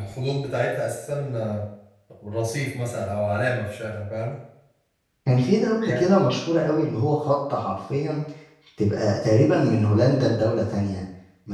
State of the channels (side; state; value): both; identical; correlation 1.00